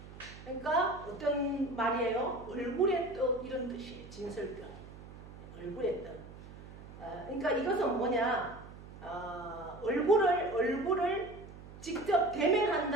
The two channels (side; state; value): right; noise; hum, 16 dB below the sound